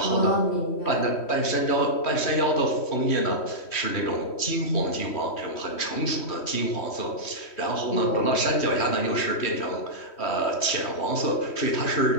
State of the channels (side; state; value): right; late; 3.1 ms